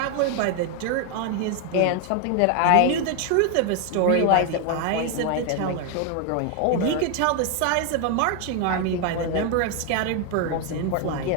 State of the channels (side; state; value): both; different; correlation 0.01